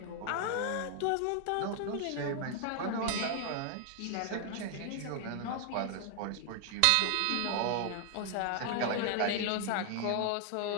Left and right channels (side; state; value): both; different; correlation 0.00